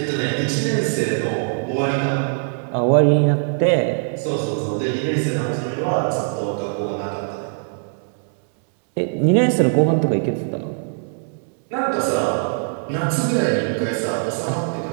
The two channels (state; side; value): silent; left; 65 dB below the other